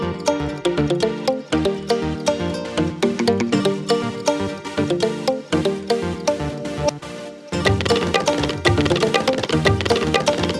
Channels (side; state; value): both; identical; correlation 1.00